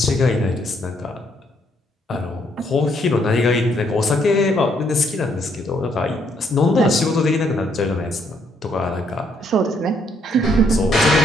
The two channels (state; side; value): normal; both; correlation 0.71